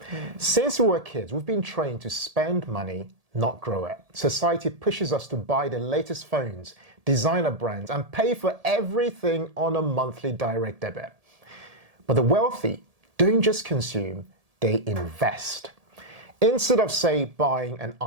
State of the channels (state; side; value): late; left; 1.7 ms